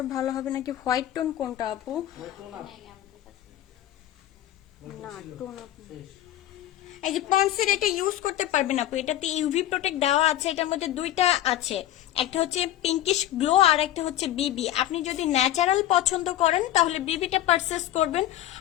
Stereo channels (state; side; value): quieter; right; 13.1 dB